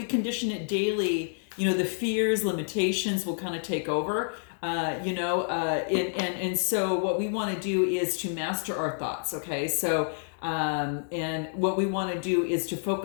condition it daily, the fears, limitations will kind of take over. And so what we want to do is to master our thoughts. Okay, so and what we want to do is to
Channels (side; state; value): right; silent; digital silence